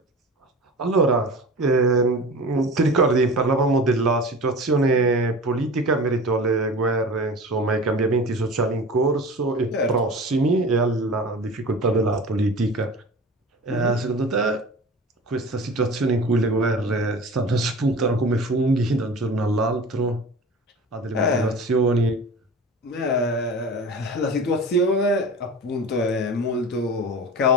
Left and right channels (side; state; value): both; normal; correlation 0.36